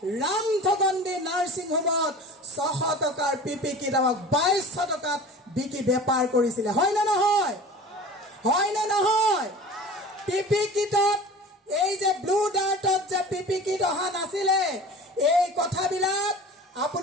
ৰামঠগণ্ডী নাৰ্ছিং হোমত 600 টকাৰ পিপি কিট আমাক 2200 টকাত বিকি বেপাৰ কৰিছিলে। হয় না নহয়? হয় না নহয়? পিপি কিটত এই যে ব্লু ডাৰ্টত যে পিপি কিট অহা নাছিলে, এই কথাবিলাক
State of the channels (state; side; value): normal; both; correlation 0.39